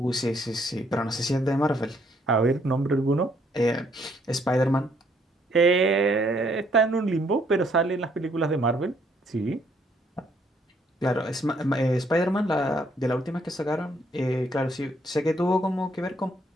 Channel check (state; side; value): normal; both; correlation 0.68